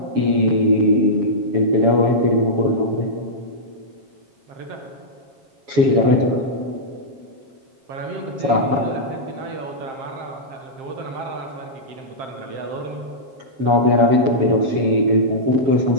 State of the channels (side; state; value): left; late; 7.2 ms